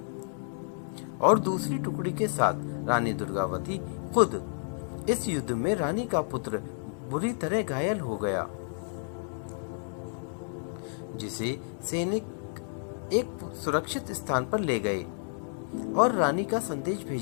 और दूसरी टुकड़ी के साथ रानी दुर्गावती खुद इस युद्ध में रानी का पुत्र बुरी तरह घायल हो गया, जिसे सैनिक एक सुरक्षित स्थान पर ले गए और रानी का संदेश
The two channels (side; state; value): right; silent; digital silence